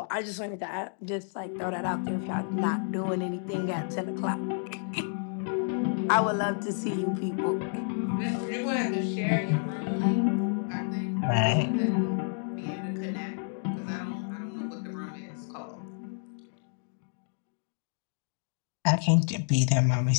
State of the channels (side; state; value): right; silent; 58 dB below the other